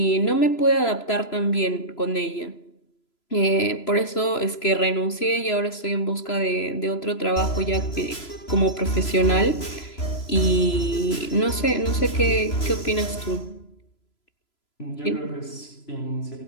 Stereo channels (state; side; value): late; right; 3.0 ms